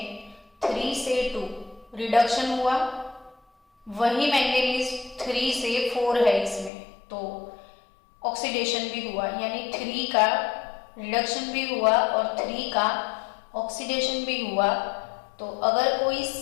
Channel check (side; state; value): right; drops out; at 6.7 s